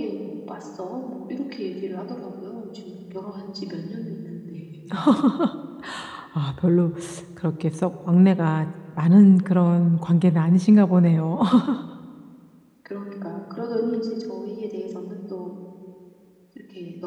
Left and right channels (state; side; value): identical; both; correlation 1.00